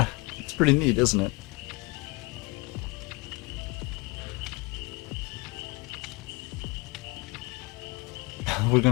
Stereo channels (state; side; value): quieter; right; 26.5 dB